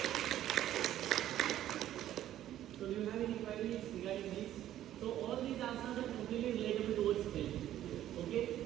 So do you have any queries regarding this? So all these asanas are completely relatable towards health. Okay.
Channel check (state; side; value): quieter; left; 12.4 dB